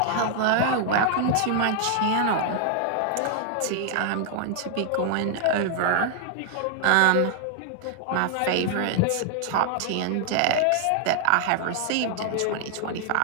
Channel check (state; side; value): different; both; correlation 0.00